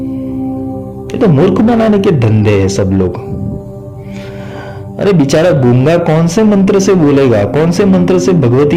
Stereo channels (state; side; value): identical; both; correlation 1.00